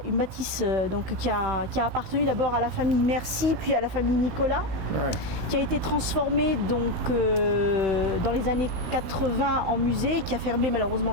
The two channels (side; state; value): left; late; 17 ms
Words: appartenu d'abord à la famille Mercy, puis à la famille Nicolas, qui a été transformée donc dans les années 80 en musée, qui a fermé malheureusement